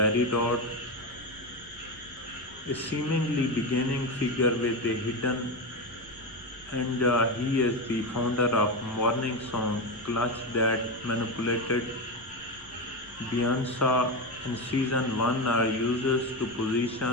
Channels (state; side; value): noise; left; rumble, 26 dB below the sound